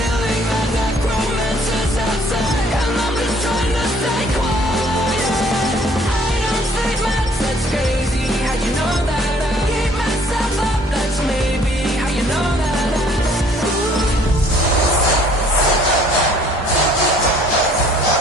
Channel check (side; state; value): both; normal; correlation 0.59